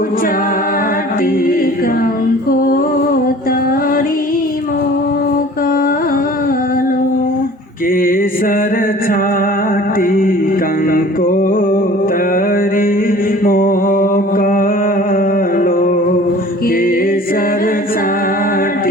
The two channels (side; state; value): both; normal; correlation 0.46